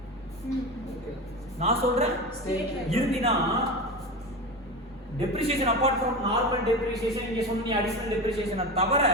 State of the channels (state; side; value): normal; both; correlation 0.24